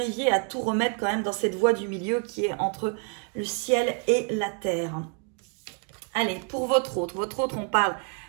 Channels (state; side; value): quieter; left; 38.6 dB